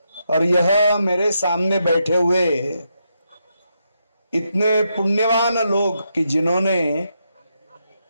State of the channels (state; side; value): inverted; both; correlation -0.82